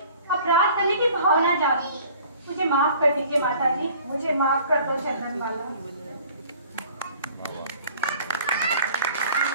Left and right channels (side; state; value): both; inverted; correlation -0.50